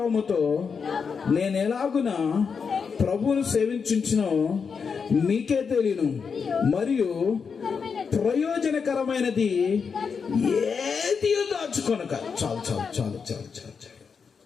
నేను ఎలాగున ప్రభువును సేవించునో మీకే తెలియను, మరియు ప్రయోజనకరమైనది ఏది దాచుకొనక. చాలు చాలు చాలు చాలు చాలు చాలు.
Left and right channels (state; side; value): quieter; right; 5.8 dB